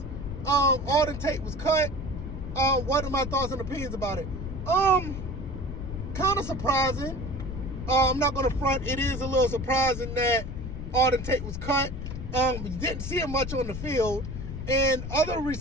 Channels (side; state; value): left; noise; rumble, 7 dB below the sound